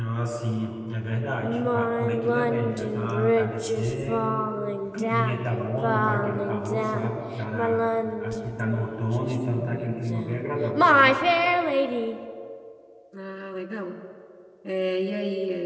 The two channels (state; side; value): identical; both; correlation 1.00